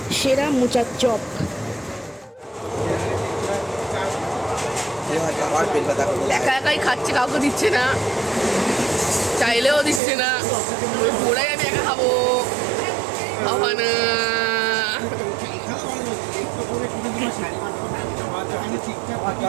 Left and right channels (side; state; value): left; drops out; at 10.0 s